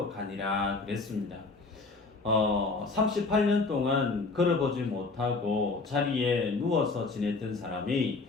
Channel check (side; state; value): right; quieter; 3.9 dB